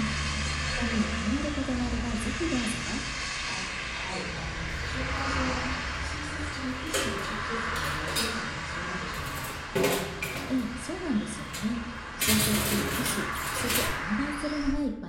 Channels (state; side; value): identical; both; correlation 1.00